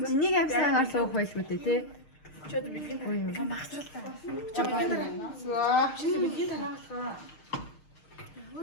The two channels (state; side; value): late; right; 6.5 ms